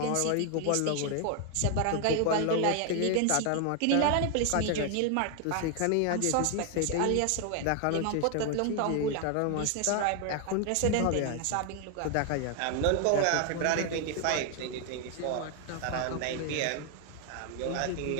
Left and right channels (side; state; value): both; different; correlation 0.00